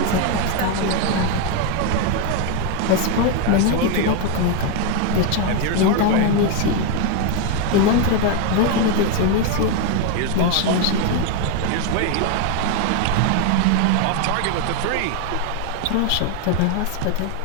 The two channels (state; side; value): different; both; correlation 0.01